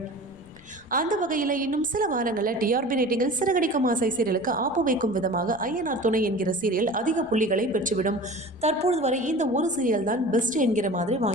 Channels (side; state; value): left; noise; rumble, 26 dB below the sound